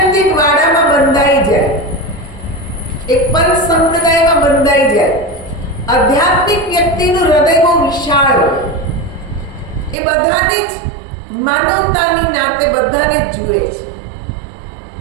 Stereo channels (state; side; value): drops out; left; at 10.0 s